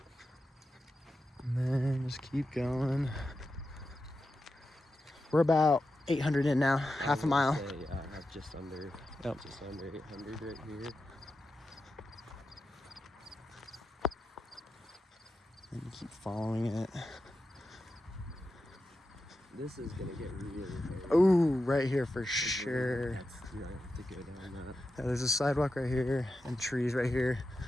And then just keep going. We're about 800 in now, half a mile. Yeah, I have just under 800 right here. And you keep following it. This is gonna get really hairy. Oh, right here for sure. You might have to go down that. Yeah, there's a sidewalk right here and trees right here.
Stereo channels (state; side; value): normal; both; correlation 0.90